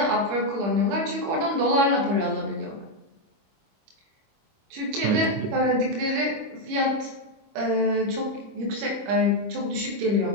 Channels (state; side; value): late; left; 25 ms